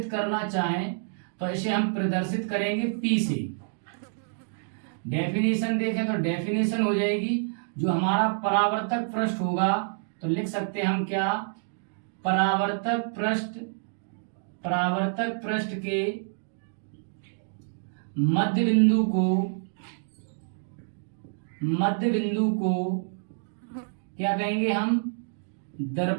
करना चाहें तो इसे हम प्रदर्शित करेंगे P से। डेफिनेशन देखें तो डेफिनेशन हो जाएगी, जो हमारा परावर्तक पृष्ठ होगा तो लिख सकते हैं हम क्या, परावर्तक पृष्ठ, परावर्तक पृष्ठ के मध्य बिंदु को, मध्य बिंदु को क्या कहेंगे हम,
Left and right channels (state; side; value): silent; left; digital silence